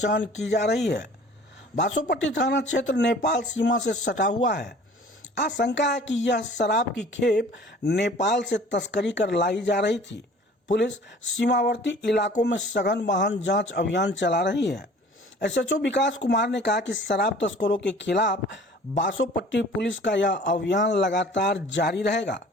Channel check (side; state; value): both; normal; correlation 0.48